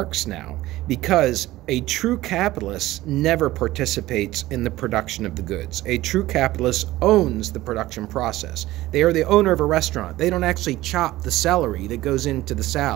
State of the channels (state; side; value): quieter; left; 16.8 dB